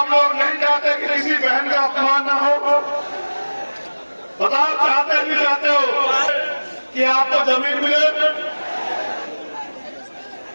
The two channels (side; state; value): both; inverted; correlation -1.00